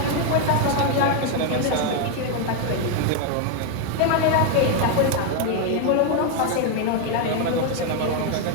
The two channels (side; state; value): both; different; correlation 0.01